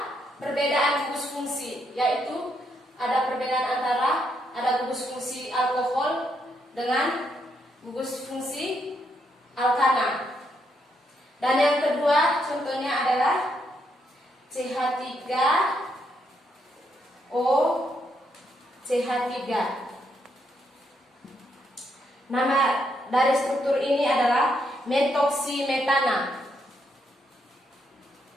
perbedaan gugus fungsi, yaitu ada perbedaan antara ada gugus fungsi alkohol dengan gugus fungsi alkana. Dan yang kedua contohnya adalah CH3O, CH3. Nama dari struktur ini adalah metoksimetana.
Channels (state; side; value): normal; both; correlation 0.77